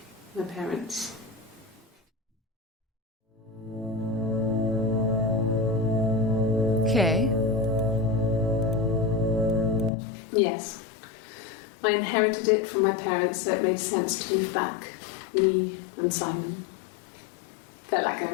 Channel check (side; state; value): right; drops out; at 9.9 s